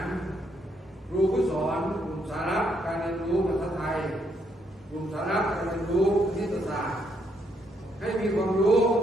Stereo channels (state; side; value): normal; both; correlation 0.74